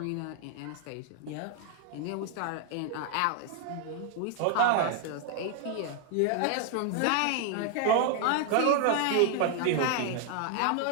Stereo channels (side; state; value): both; different; correlation 0.01